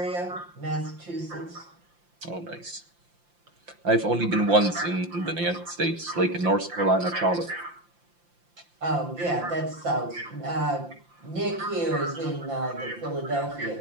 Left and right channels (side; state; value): left; late; 5.8 ms